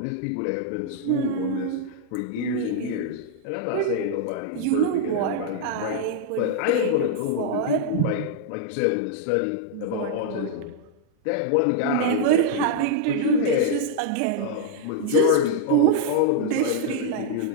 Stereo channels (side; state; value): both; different; correlation -0.01